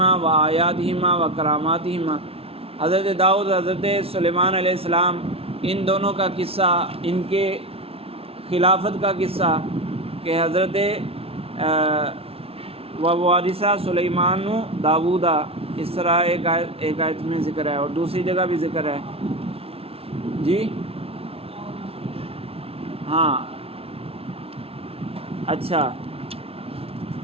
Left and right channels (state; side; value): late; left; 0.28 ms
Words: و آیاتہما و کراماتہما، حضرت داؤد حضرت سلیمان علیہ السلام، ان دونوں کا قصہ، ان کے خلافت کا قصہ کہ حضرت ووارثہ سلیمان داؤدا، اس طرح ایک آیت میں ذکر ہے اور دوسری جگہ بھی ذکر ہے۔ جی ہاں اچھا،